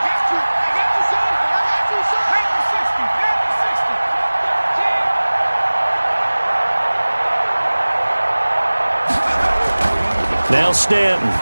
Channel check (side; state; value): both; inverted; correlation -1.00